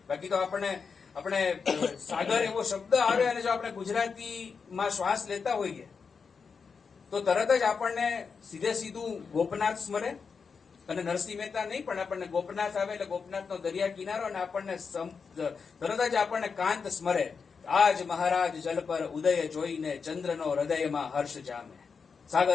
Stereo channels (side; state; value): right; quieter; 5.5 dB